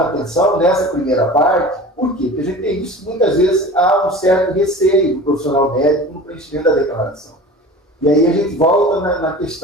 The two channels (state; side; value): normal; both; correlation 0.37